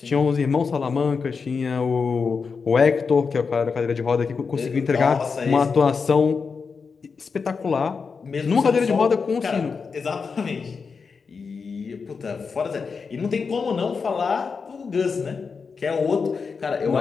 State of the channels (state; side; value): quieter; right; 5.2 dB